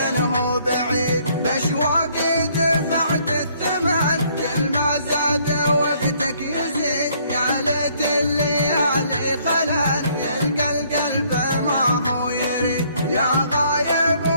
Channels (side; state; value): both; inverted; correlation -0.64